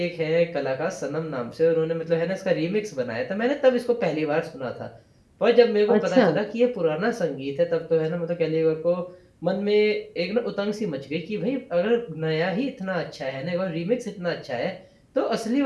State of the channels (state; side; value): identical; both; correlation 1.00